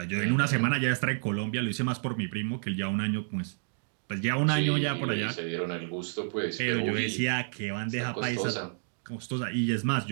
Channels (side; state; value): left; silent; digital silence